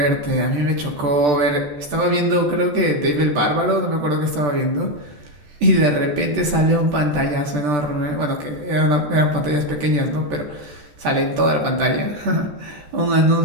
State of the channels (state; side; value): late; left; 14 ms